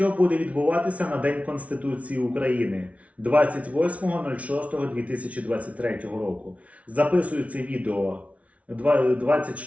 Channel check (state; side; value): late; left; 0.066 ms